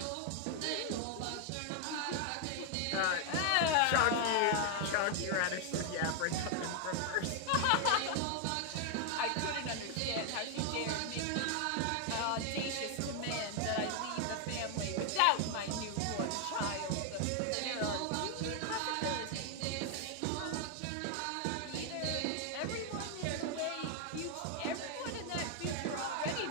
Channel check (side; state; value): both; different; correlation 0.00